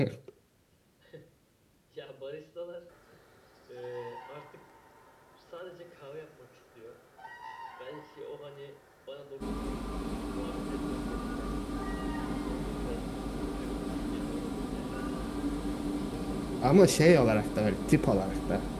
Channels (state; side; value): identical; both; correlation 1.00